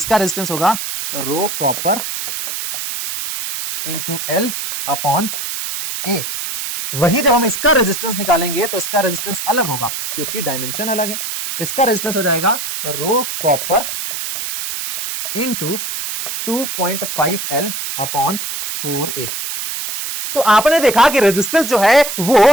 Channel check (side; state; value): right; noise; hiss, 5 dB below the sound